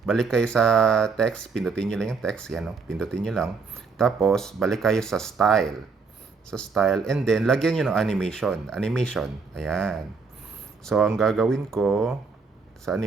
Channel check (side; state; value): left; quieter; 4.8 dB